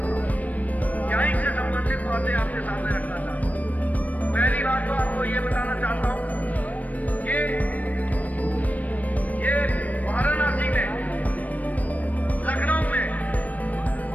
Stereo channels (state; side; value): late; right; 0.073 ms